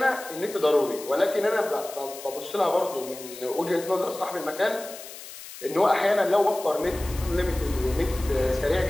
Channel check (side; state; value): left; noise; hiss, 14 dB below the sound